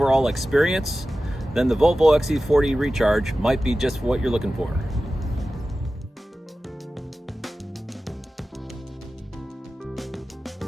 experience? Then the Volvo XC40 Recharge might be just what you're looking for.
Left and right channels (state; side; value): normal; both; correlation 0.95